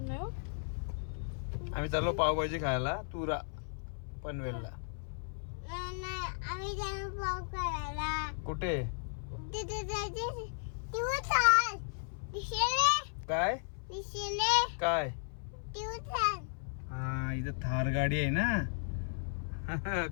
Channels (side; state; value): right; silent; 54 dB below the other